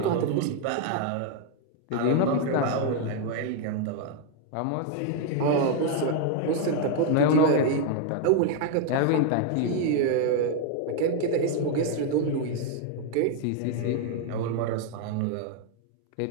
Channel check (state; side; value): different; both; correlation 0.00